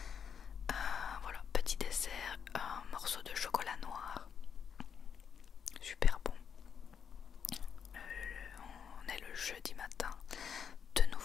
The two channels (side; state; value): right; quieter; 7.3 dB